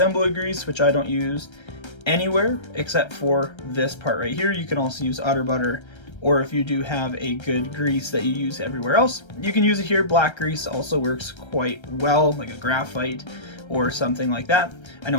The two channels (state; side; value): late; right; 1.3 ms